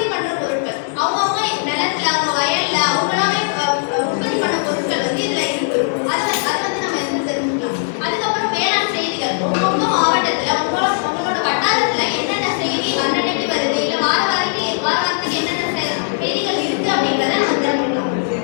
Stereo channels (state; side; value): silent; right; 67 dB below the other